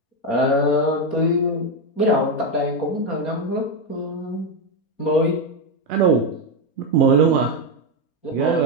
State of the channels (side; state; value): right; late; 4.3 ms